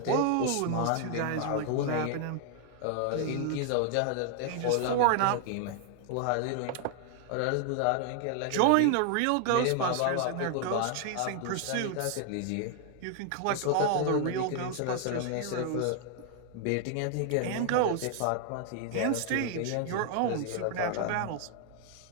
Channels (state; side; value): different; both; correlation 0.00